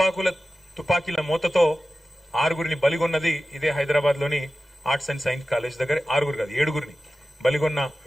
తుపాకీల మూతతో 6గురిని బలిగొన్నది ఇదే హైదరాబాద్లోని ఆర్ట్స్ అండ్ సైన్స్ కాలేజ్ దగ్గర. 6గురు కాదు 7గురిని బలిగొన్న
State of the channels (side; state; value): both; normal; correlation 0.95